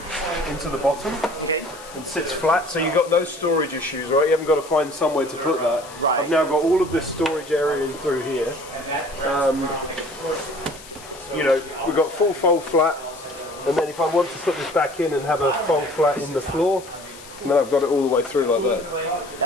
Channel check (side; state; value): left; noise; hiss, 18 dB below the sound